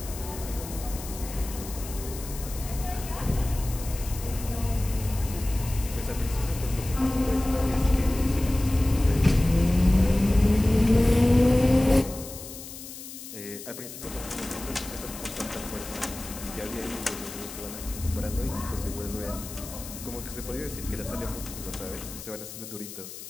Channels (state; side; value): noise; left; hiss, 12 dB below the sound